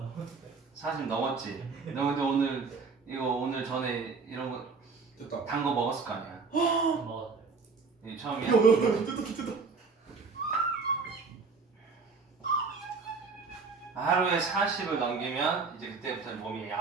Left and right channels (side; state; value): left; quieter; 4.7 dB